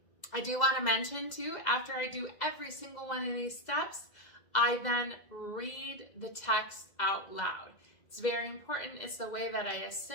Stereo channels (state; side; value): late; right; 1.9 ms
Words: I do want to mention too, after I do every single one of these steps, I then read the text out loud. It's very important. It's the way that I